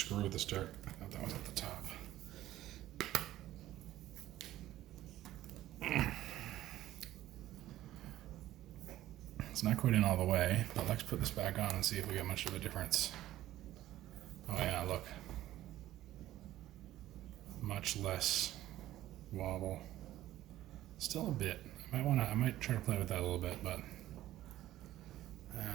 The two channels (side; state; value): left; quieter; 14.3 dB